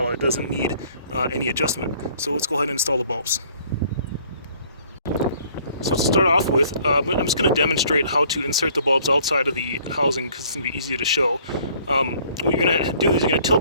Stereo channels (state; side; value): inverted; both; correlation -0.58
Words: It doesn't need any adjustment. So let's go ahead and install the bulbs. So to start off with, I'm just going to demonstrate how to insert the bulbs outside of the housing because it's going to be easier to show. What you're going to do is you're going to tilt